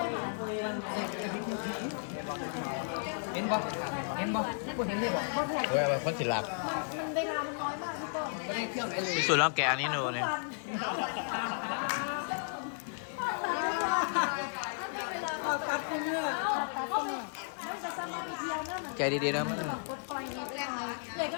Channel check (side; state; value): right; silent; digital silence